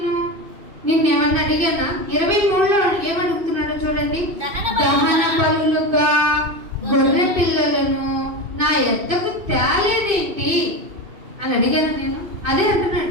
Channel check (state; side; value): late; left; 2.7 ms